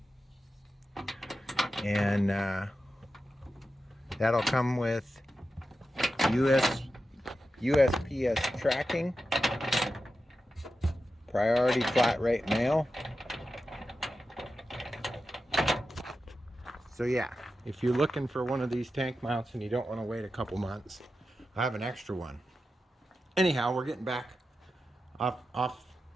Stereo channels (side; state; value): both; normal; correlation 0.91